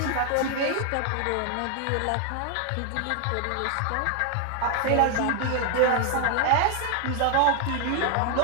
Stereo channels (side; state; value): both; different; correlation 0.00